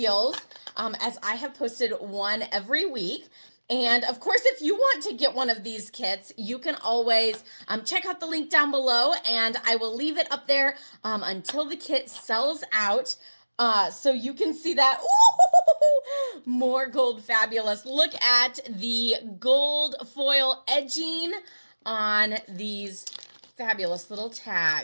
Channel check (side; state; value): both; inverted; correlation -1.00